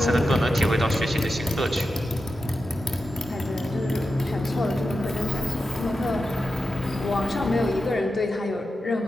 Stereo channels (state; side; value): normal; both; correlation 0.90